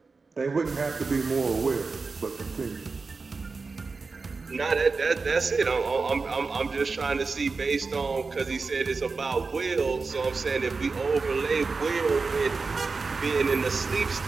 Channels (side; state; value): left; quieter; 4.3 dB